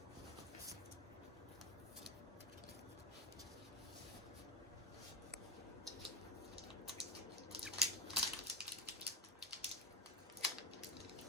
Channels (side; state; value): both; normal; correlation 0.21